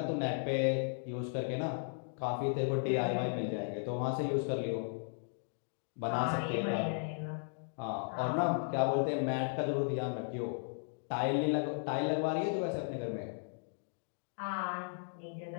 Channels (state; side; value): silent; right; digital silence